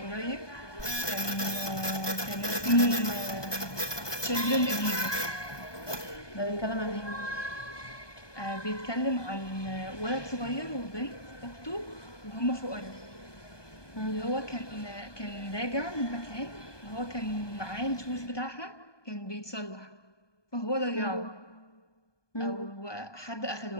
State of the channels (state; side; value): late; right; 1.2 ms